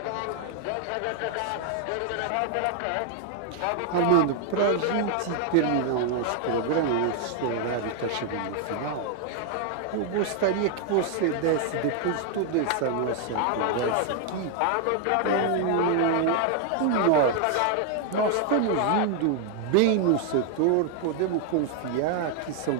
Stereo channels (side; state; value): both; different; correlation 0.00